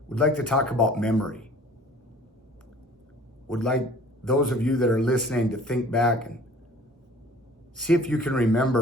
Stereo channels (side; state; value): both; normal; correlation 0.50